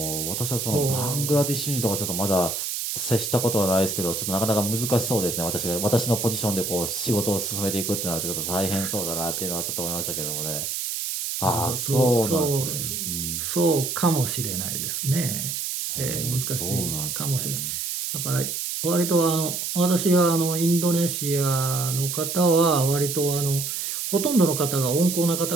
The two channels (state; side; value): noise; right; hiss, 3 dB below the sound